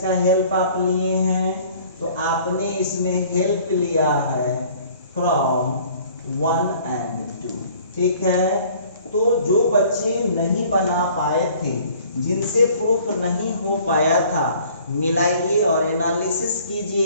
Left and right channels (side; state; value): both; inverted; correlation -0.53